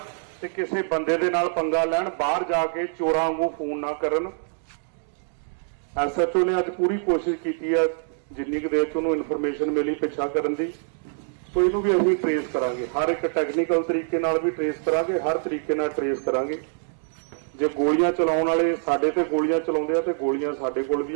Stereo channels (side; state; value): left; silent; digital silence